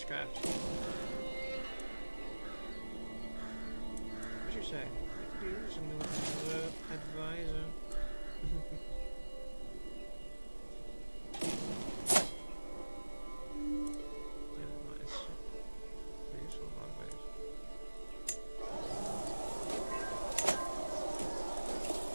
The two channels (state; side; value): inverted; both; correlation -1.00